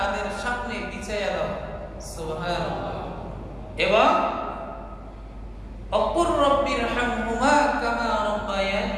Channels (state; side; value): identical; both; correlation 1.00